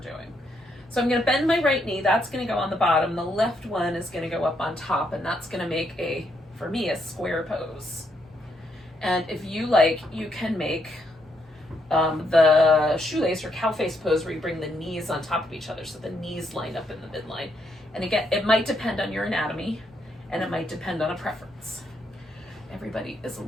So I'm going to bend my right knee. That's going to go on the bottom. The left one is going to go up on top, and that's going to make for me, a square pose. And if you like, you can make the shoelace or cow face pose where you bring the knees on top of each other so the knees line up in the midline. And again, it might depend on your anatomy, and it might depend on a preference. Everybody is a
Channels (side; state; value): both; normal; correlation 0.76